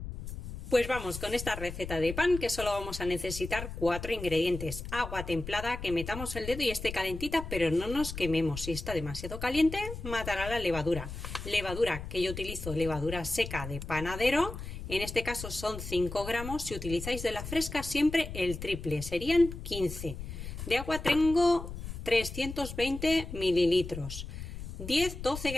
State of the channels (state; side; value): noise; left; rumble, 9 dB below the sound